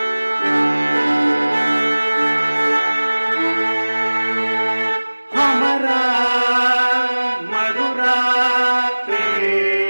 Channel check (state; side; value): inverted; both; correlation -1.00